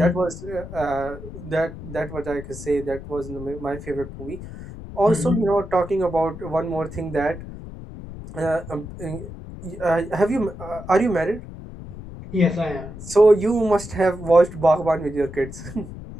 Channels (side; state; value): left; noise; rumble, 12 dB below the sound